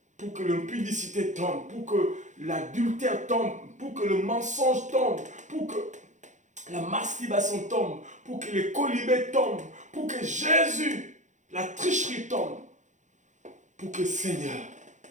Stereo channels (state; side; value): late; left; 0.35 ms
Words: Pour que l'impudicité tombe. Pour que l'adultère tombe. Pour que le mensonge tombe. Pour que la masturbation tombe. Pour que les colibés tombent. Pour que Jésus, la tricherie tombe. Pour que Seigneur,